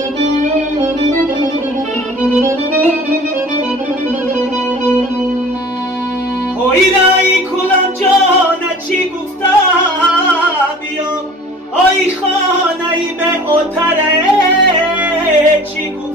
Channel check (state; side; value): normal; both; correlation 0.45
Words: هویرایی کلم جانه چی گفتم بیام، آی خانه‌ای به اتره چی